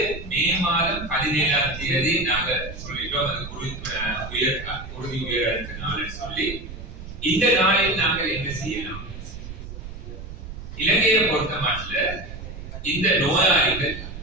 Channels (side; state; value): right; noise; rumble, 11 dB below the sound